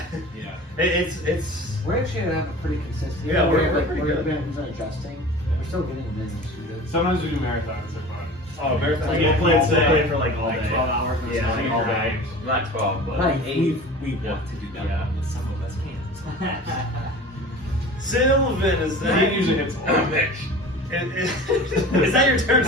Yeah. It's. We're actually gonna have a pretty consistent. Yeah, we're pretty we're good. been adjusting. We're still getting them in. Sometimes we do marathons. They're fun. Oh, marathon. Like, We'll we'll play play it for like all Like day. 12 hours. or Yeah, something. like all day. Not 12, but Like 8. We want to do that, Yeah. but some of us can't. Sylvan, is He that? usually hits a lot. Is that your turn,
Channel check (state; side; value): normal; both; correlation 0.38